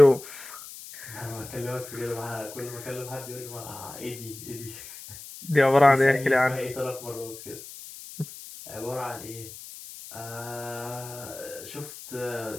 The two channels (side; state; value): left; noise; hiss, 14 dB below the sound